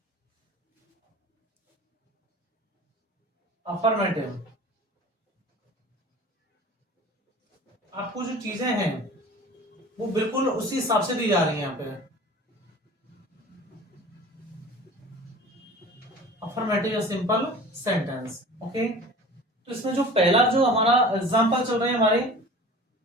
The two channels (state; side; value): normal; both; correlation 0.40